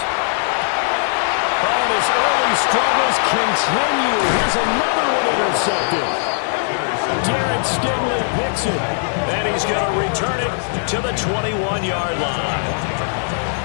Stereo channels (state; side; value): silent; right; 64 dB below the other